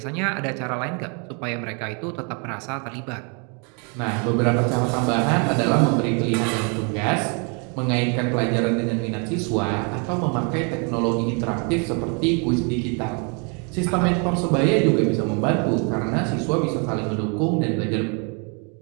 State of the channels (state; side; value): quieter; left; 35.4 dB